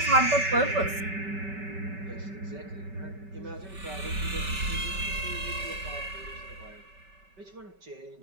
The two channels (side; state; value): left; late; 5.2 ms